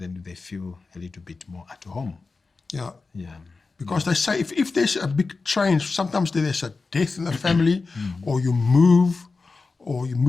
they feel a little bit more at home. Yeah. Yeah. Because they say if there's a big change, sometimes there's a death in the family, or you move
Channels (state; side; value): quieter; right; 4.1 dB